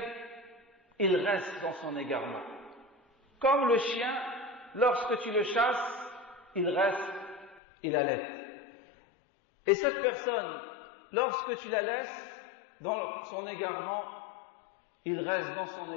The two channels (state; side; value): drops out; right; at 7.6 s